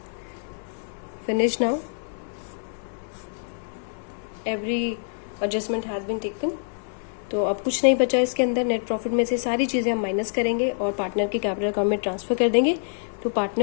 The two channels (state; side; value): silent; right; digital silence